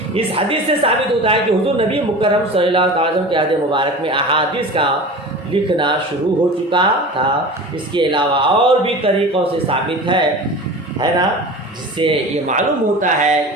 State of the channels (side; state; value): both; normal; correlation 0.34